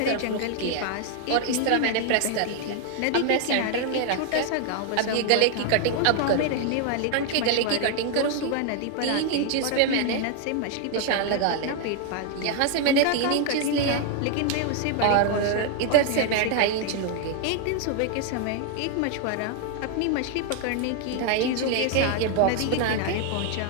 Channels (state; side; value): different; both; correlation 0.00